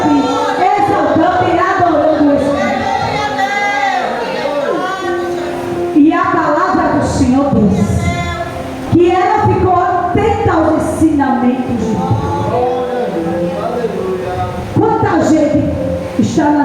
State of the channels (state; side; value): identical; both; correlation 1.00